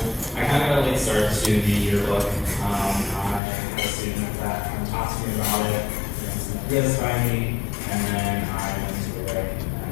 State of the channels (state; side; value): drops out; right; at 3.4 s